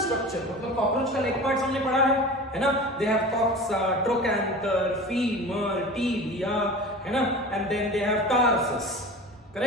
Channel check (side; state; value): both; normal; correlation 0.35